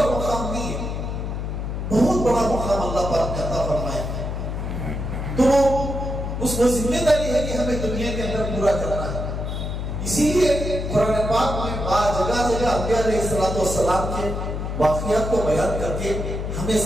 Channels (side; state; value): left; noise; hum, 4 dB below the sound